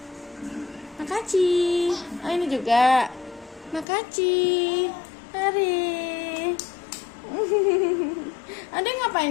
Makasih. Oh, ini juga. Makasih. Hari. Ade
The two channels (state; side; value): drops out; right; at 3.9 s